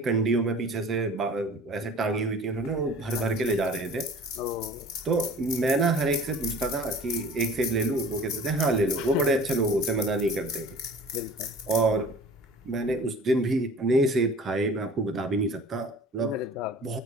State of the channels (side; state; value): both; normal; correlation 0.45